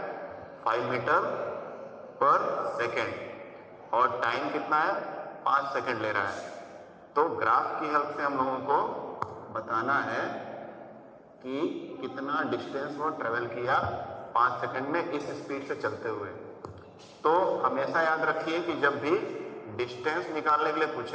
5 मीटर पर सेकेंड, और टाइम कितना है 5 सेकेंड ले रहा है। तो ग्राफ की हेल्प से हम लोगों को बताना है कि कितना डिस्टेंस वो ट्रेवल किया 5 सेकेंड में इस स्पीड से चलते हुए। तो हमेशा याद रखिए कि जब भी डिस्टेंस निकालने के लिए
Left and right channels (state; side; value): identical; both; correlation 1.00